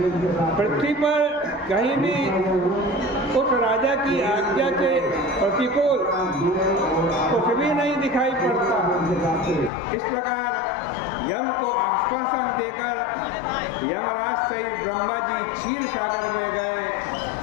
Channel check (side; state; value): right; drops out; at 9.7 s